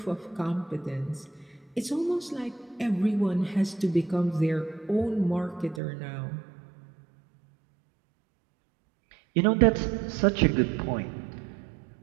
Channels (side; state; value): left; drops out; at 5.8 s